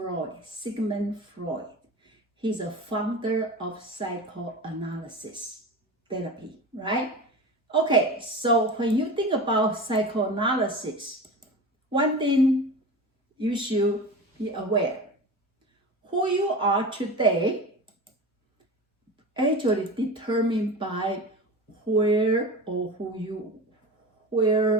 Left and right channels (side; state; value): both; normal; correlation 0.30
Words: Sigmund Freud. He's a founder of psychoanalysis therapy, right? Okay, so when you think about psychoanalysis, one thing you should be aware. Who you are today actually determined by where were